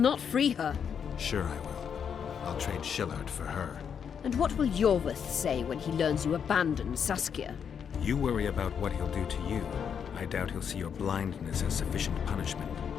free her. Sure I will. I'll trade Shillard for her. And what will Yorvith say when he learns you abandoned Saskia? You worry about what he'll do to you. I doubt he'll see your blindness as sufficient punishment.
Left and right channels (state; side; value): quieter; right; 7.4 dB